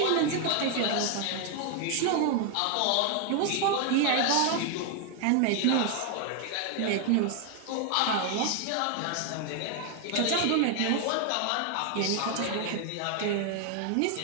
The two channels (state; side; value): different; both; correlation 0.01